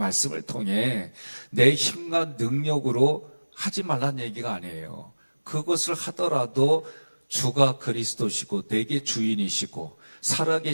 통해 내 힘과 능력으로 하지 말란 얘기가 아니에요. 그것을 하더라도 주가 그리스도시고 내게 주인이시고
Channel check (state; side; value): inverted; both; correlation -1.00